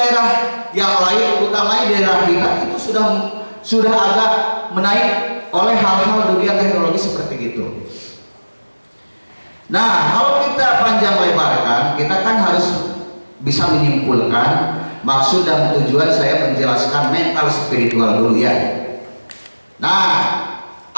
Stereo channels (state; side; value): inverted; both; correlation -1.00